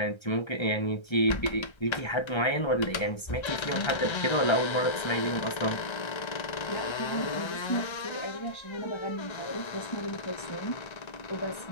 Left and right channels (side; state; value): right; late; 1.3 ms